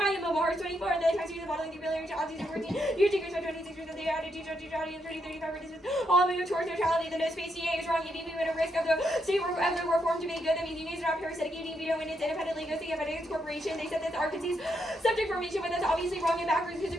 Mars 24, and the tax of modeling the ability to audience 14. Years decreased by 26% of the attitude of audience 30-35 participants. All moving towards neutrality. The no space DA is wrong. Giving women a risk of the state of the reform to make good. That means unions are not parasitic. Giving veto know when it's independently negotiating against corporation. They said that the Arkansas subject formation, but that's obviously wrong and backwards because it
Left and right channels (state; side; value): normal; both; correlation 0.79